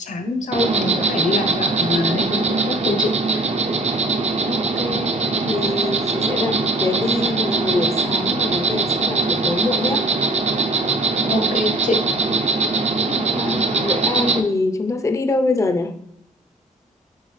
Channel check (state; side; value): normal; both; correlation 0.49